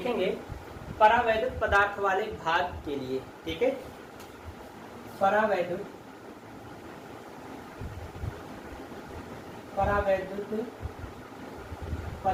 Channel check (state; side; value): identical; both; correlation 1.00